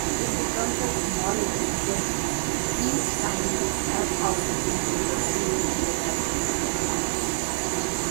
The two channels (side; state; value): left; silent; digital silence